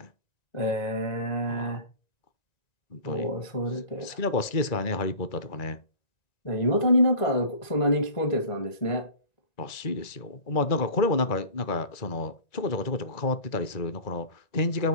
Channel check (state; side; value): late; right; 1.9 ms